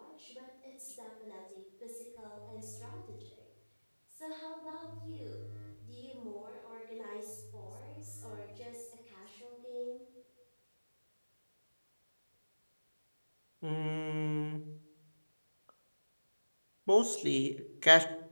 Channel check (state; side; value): inverted; both; correlation -1.00